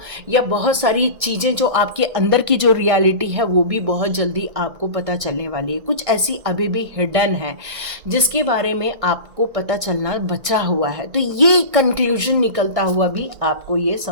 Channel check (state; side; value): late; left; 1.6 ms